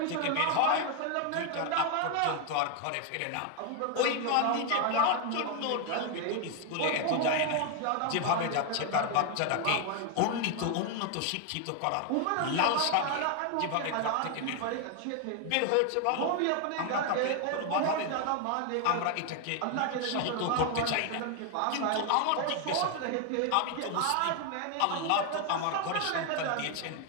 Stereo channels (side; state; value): both; different; correlation 0.01